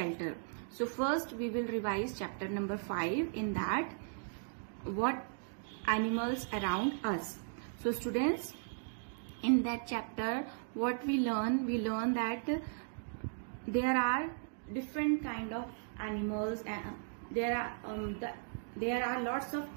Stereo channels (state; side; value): silent; left; digital silence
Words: So first we will revise chapter number 5, in that what animals around us. So students, in that chapter what we learn that there are different kind of animals, and there are lots of